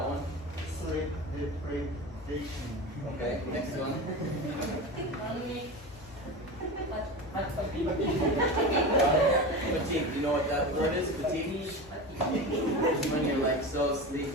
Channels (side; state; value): both; normal; correlation 0.26